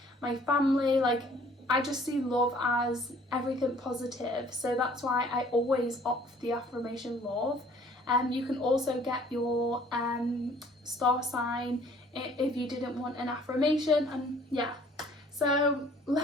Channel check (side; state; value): both; normal; correlation 0.56